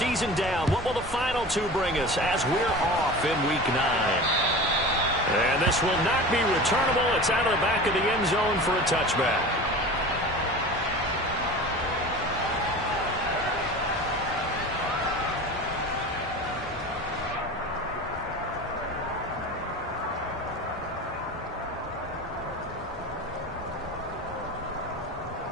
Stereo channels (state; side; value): normal; both; correlation 0.34